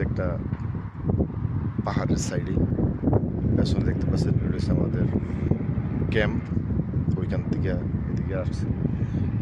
একটা পাহাড়ের সাইডে। পেছনে দেখতে পাচ্ছেন এটা হচ্ছে আমাদের ক্যাম্প। ওইখান থেকে এদিকে আসছি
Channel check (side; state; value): both; identical; correlation 1.00